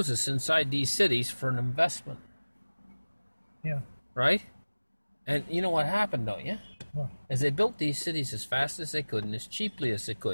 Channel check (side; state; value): both; inverted; correlation -1.00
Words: inside these cities for an investment. Yeah. Right? And you know what happened, don't you? What? As they built these cities as fast as they could and as cheaply as they